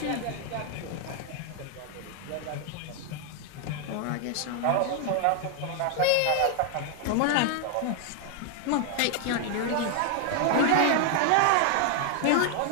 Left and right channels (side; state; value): both; different; correlation 0.00